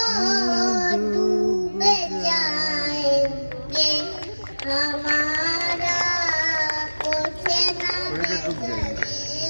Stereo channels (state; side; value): inverted; both; correlation -1.00